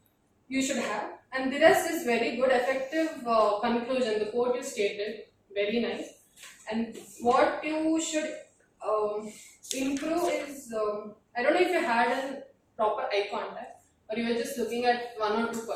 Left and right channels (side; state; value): both; identical; correlation 1.00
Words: You should have. And the rest is very good, effective conclusion. The quote you stated, very nice. And what you should improve is, I don't know if you had a proper eye contact or you were just looking at 1 or 2